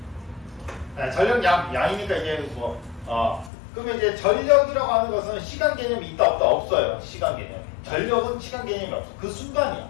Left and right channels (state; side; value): drops out; right; at 3.5 s